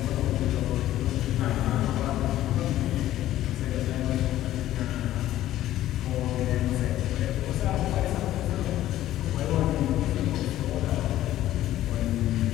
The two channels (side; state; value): right; quieter; 13.7 dB